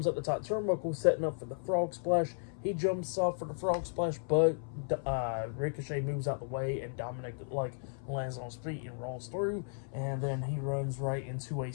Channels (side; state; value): right; silent; 55 dB below the other